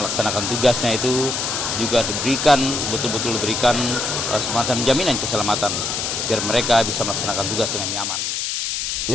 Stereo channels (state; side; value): noise; left; hiss, 1 dB below the sound